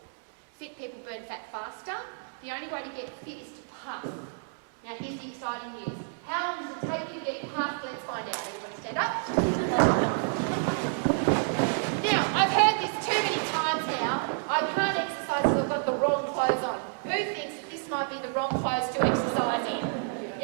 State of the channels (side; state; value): left; silent; 58 dB below the other